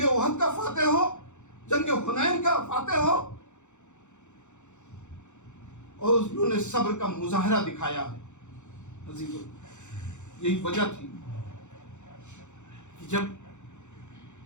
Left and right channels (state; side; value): late; right; 0.84 ms